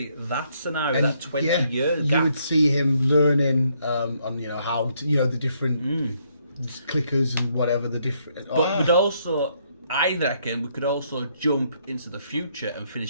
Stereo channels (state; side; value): inverted; both; correlation -0.72